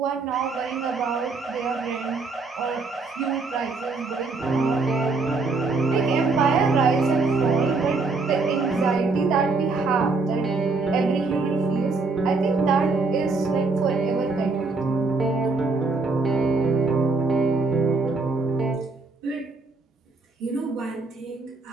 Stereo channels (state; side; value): quieter; left; 3.9 dB